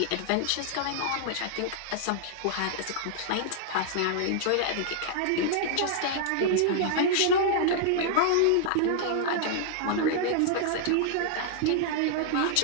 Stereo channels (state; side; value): different; both; correlation -0.01